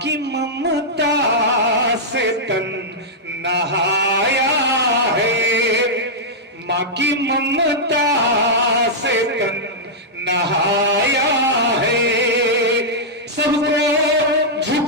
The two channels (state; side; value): normal; both; correlation -0.09